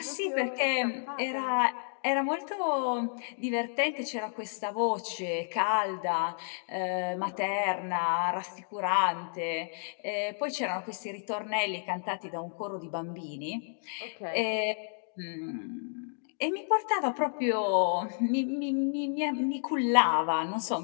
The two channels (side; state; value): right; silent; digital silence